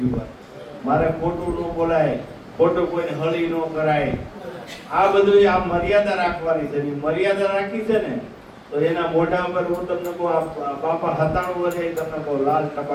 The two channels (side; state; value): both; identical; correlation 1.00